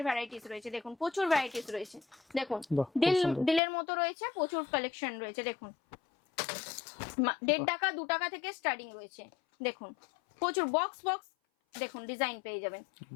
ভ্যারাইটিস রয়েছে। দেখুন প্রচুর ভ্যারাইটিস রয়েছে। দেখুন দিলের মতো রয়েছে, প্রচুর কালেকশন রয়েছে। দেখুন 1.5 টাকা 2 টাকা থেকে স্টার্টিং রয়েছে। দেখুন প্রচুর বক্স দেখুন ডিজাইন পেয়ে যাবেন।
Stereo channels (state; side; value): drops out; right; at 3.6 s